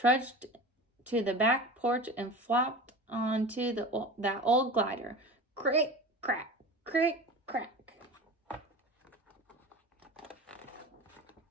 to the back porch, and flopped onto that old glider. Crick, crack, crick, crack.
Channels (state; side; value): normal; both; correlation 0.33